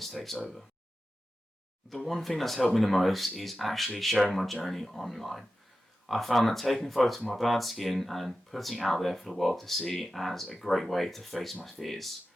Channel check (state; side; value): normal; both; correlation 0.93